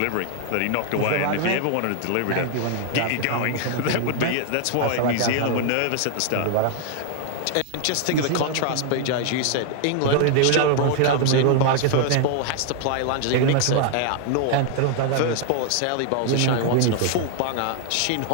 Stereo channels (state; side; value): different; both; correlation 0.00